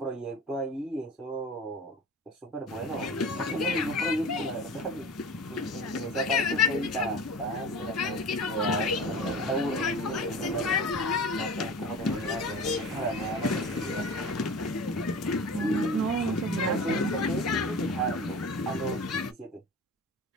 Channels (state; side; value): normal; both; correlation 0.35